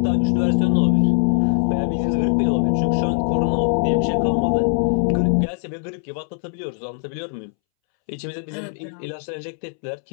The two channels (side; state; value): right; silent; 65 dB below the other